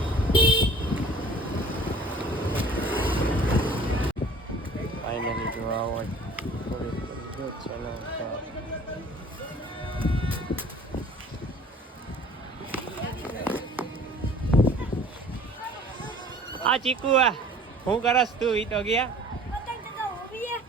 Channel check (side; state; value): both; normal; correlation 0.49